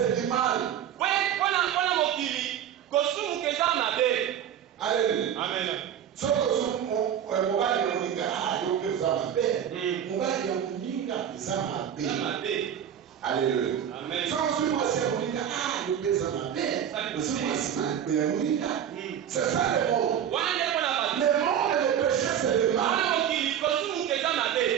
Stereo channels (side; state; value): left; quieter; 9.4 dB